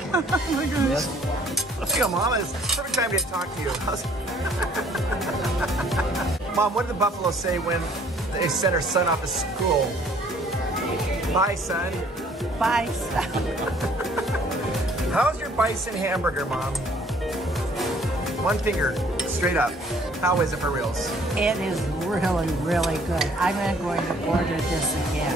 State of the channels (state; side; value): normal; both; correlation 0.58